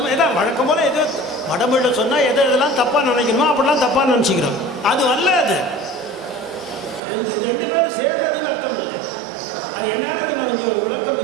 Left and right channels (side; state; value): left; drops out; at 7.0 s